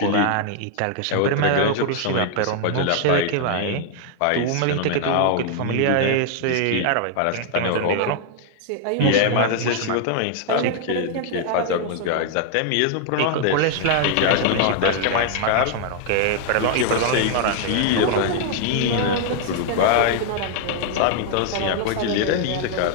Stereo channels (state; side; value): different; both; correlation 0.00